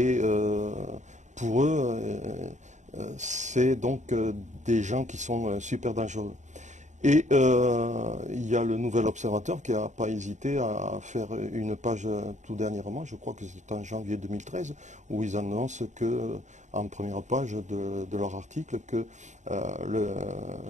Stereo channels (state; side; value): late; left; 0.35 ms